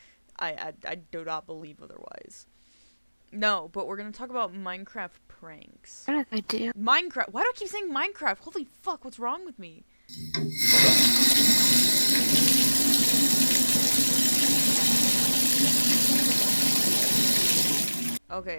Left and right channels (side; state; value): both; inverted; correlation -1.00